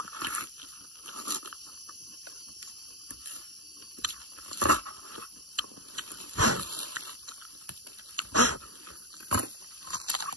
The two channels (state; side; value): late; left; 0.69 ms